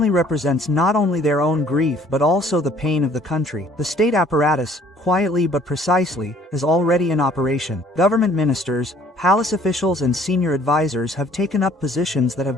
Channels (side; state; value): both; normal; correlation 0.57